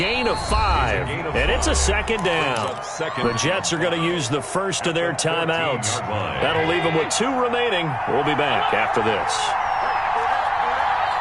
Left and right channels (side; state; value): both; identical; correlation 1.00